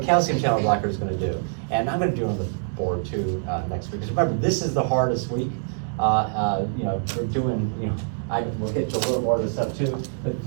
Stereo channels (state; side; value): silent; left; digital silence